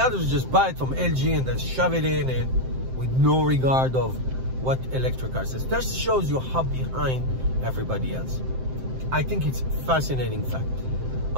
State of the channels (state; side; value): late; left; 7.7 ms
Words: others, just buy it from LG and then shove it in, and with no regard of what electric cars is. That shows you how behind everybody else. I think it's a fascinating fact.